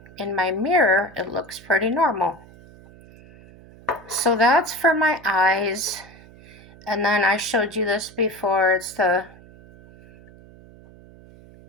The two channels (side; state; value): right; noise; hum, 22 dB below the sound